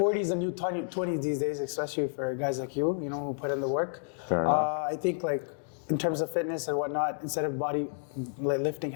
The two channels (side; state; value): right; silent; digital silence